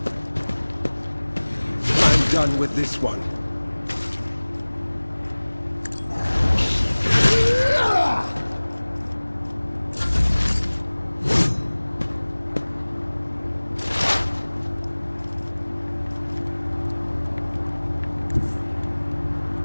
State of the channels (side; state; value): both; inverted; correlation -1.00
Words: I'm done with this one.